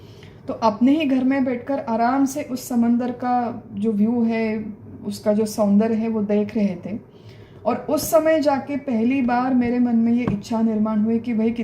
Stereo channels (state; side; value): identical; both; correlation 1.00